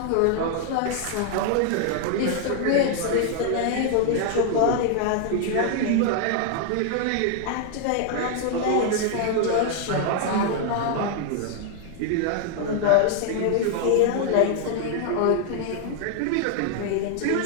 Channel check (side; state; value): both; different; correlation 0.00